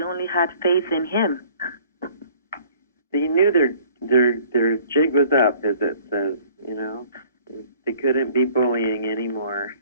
only had faith in him. They knew their jig was up, as it says. You know, they couldn't be bullying anymore.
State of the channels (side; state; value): both; inverted; correlation -0.54